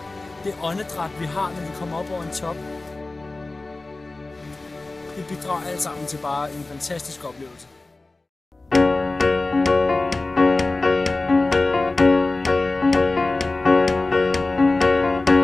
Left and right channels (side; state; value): right; quieter; 3.2 dB